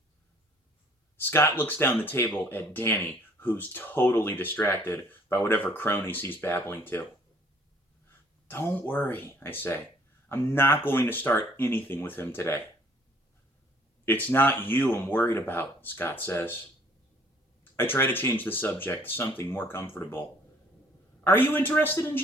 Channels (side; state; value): both; normal; correlation 0.58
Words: Scott looks down the table at Danny, who's totally distracted by whatever cronies he's babbling to. "Don't worry," I say. "I'm not going to start anything with him today." "It's not you I'm worried about," Scott says. I try to change the subject to something more comfortable. "Are you interested in